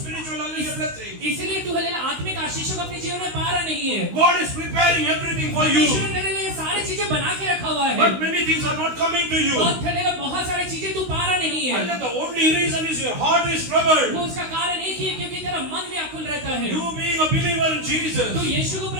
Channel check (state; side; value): late; left; 16 ms